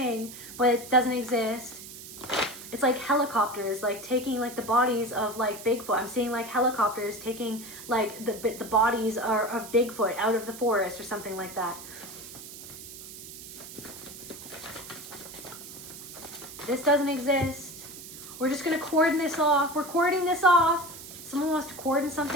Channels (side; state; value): right; noise; hiss, 13 dB below the sound